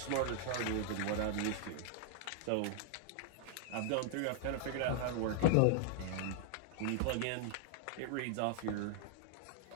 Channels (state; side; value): different; both; correlation -0.01